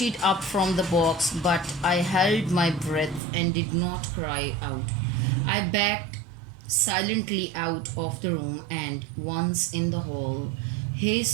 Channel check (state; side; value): drops out; left; at 3.2 s